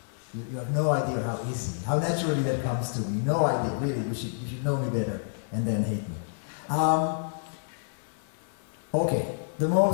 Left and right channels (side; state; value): right; silent; digital silence